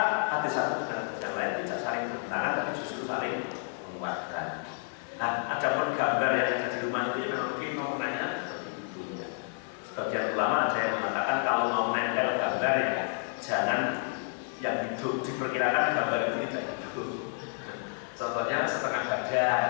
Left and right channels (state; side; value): silent; right; 56 dB below the other